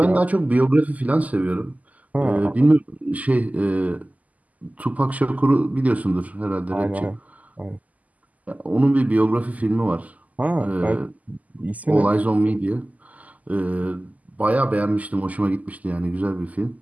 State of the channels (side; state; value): left; late; 0.075 ms